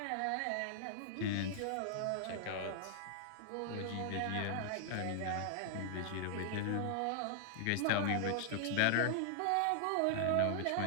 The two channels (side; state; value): both; different; correlation -0.01